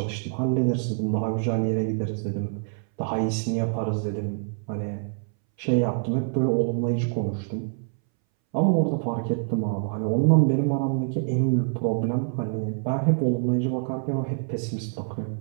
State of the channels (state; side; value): silent; left; 61 dB below the other